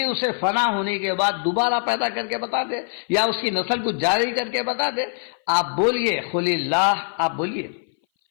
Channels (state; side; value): silent; right; 59 dB below the other